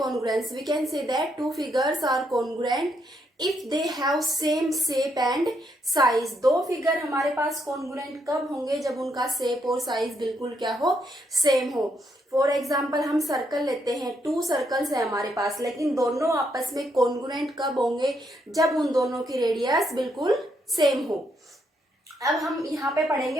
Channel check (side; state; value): both; normal; correlation 0.76